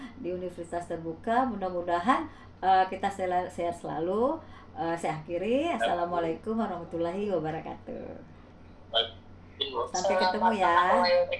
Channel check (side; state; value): both; identical; correlation 1.00